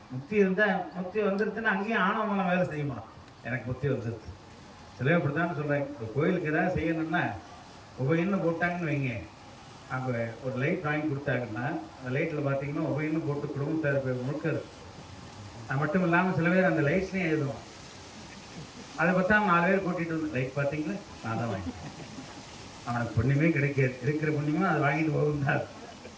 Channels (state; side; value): identical; both; correlation 1.00